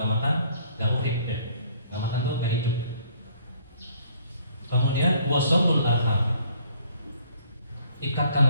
makan, nggak urip deh. Nggak makan tuh nggak hidup. Kemudian wasolul arham,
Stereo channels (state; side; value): inverted; both; correlation -0.60